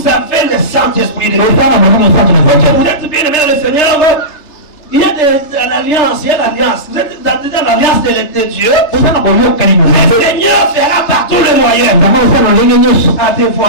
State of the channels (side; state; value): right; late; 3.3 ms